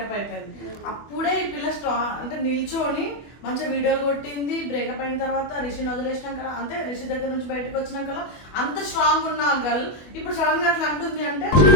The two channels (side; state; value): right; late; 24 ms